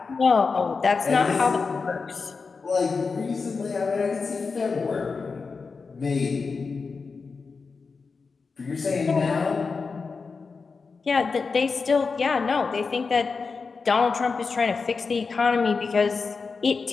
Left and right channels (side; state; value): right; quieter; 4.7 dB